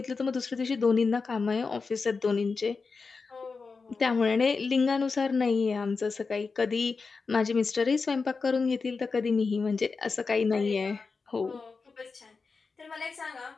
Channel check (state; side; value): quieter; right; 4.6 dB